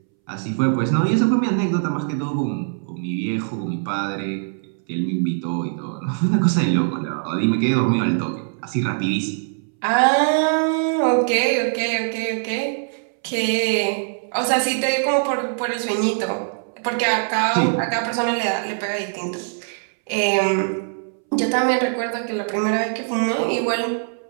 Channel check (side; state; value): left; silent; 64 dB below the other